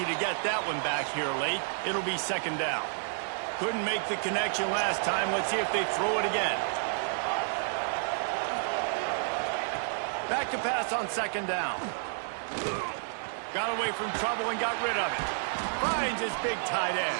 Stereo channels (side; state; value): left; silent; digital silence